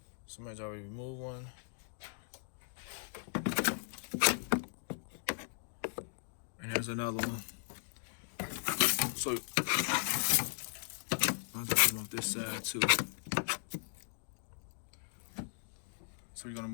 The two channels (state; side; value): silent; right; digital silence